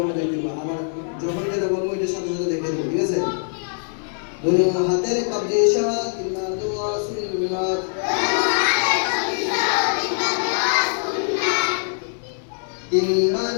দেখতে পাবো আমার যখন যেটা বলবো এটা সাথে সাথে দেখে দেবো ঠিক আছে দুই হাতের কবজি সহ তিনবার দোয়া সুন্নাত তিনবার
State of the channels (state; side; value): silent; right; digital silence